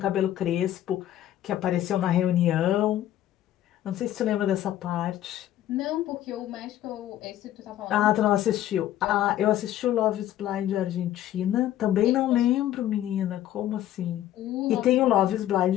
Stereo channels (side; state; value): right; quieter; 12.6 dB